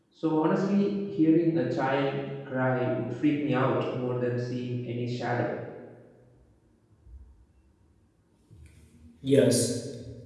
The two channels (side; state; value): both; identical; correlation 1.00